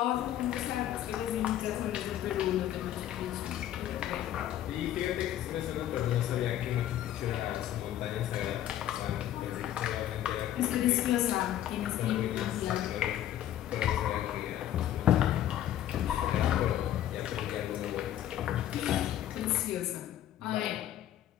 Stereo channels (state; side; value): quieter; right; 12.0 dB